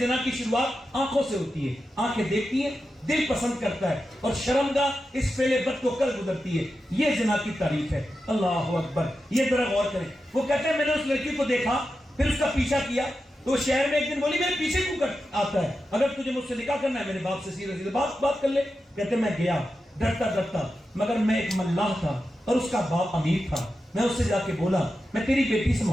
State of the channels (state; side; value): normal; both; correlation 0.90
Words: کی شروعات آنکھوں سے ہوتی ہے, آنکھیں دیکھتی ہیں, دل پسند کرتا ہے, اور شرمگاہ اس فعل بد کو کر گزرتی ہے. یہ زنا کی تعریف ہے. اللہ اکبر. یہ ذرا غور کریں. وہ کہتے ہیں میں نے اس لڑکی کو دیکھا, پھر اس کا پیچھا کیا, تو وہ شہر میں ایک دن بولی میرے پیچھے کیوں آتا ہے, اگر تجھے مجھ سے نکاح کرنا ہے میرے باپ سے سیدھے سیدھے بات کر لے. کہتے میں گیا ڈرتا, مگر میں ایک ملاح تھا اور اس کا باپ امیر تھا. میں اس سے جا کے بولا میں تیری بیٹی سے